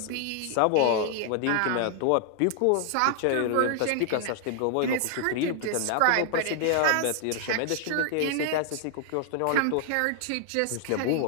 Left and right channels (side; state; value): both; different; correlation 0.00